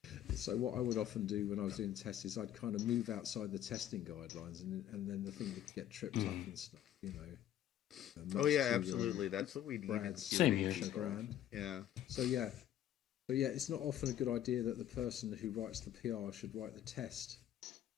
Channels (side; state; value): right; quieter; 11.4 dB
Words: so what I would often do when I was doing tests is I'd kind of move outside the testing guidelines, and then the thing would get tripped up and stuff, Oh yeah, absolutely. That's what we need. Same here. Yeah. So yeah, it's not often a good idea that the person who writes the PR should write the test